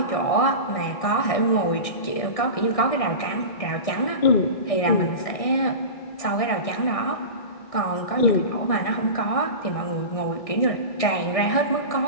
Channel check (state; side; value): late; right; 1.6 ms